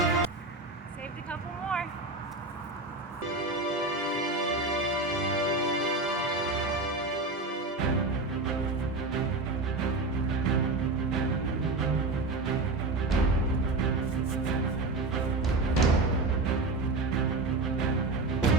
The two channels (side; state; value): left; quieter; 3.2 dB